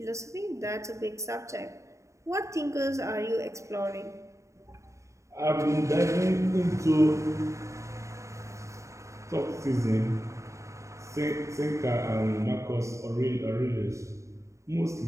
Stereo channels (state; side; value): late; left; 0.14 ms